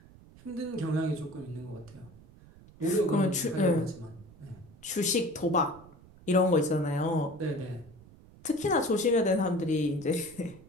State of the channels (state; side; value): noise; right; rumble, 22 dB below the sound